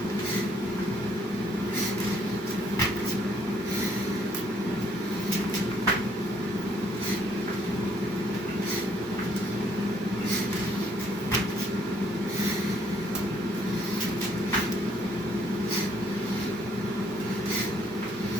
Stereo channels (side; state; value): both; normal; correlation 0.65